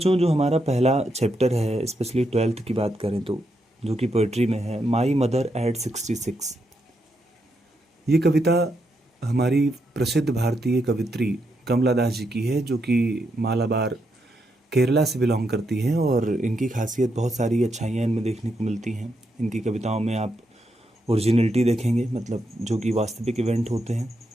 जो हमारा पहला चैप्टर है, स्पेशली 12th की बात करें तो, जो कि पोइट्री में है, माई मदर एट 66। ये कविता हमारी प्रसिद्ध भारतीय कवित्री कमला दास जी की है, जो कि मालाबार केरला से बिलोंग करती हैं। और इनकी खासियत, बहुत सारी अच्छाइयाँ इनमें देखने को मिलती हैं। इनकी कविताओं में आप ओरिजिनलिटी देखेंगे, मतलब जो कि वास्तविक इवेंट होते हैं।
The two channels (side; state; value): both; normal; correlation 0.81